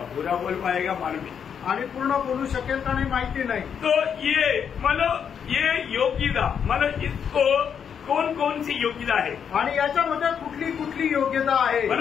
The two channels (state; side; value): quieter; right; 7.6 dB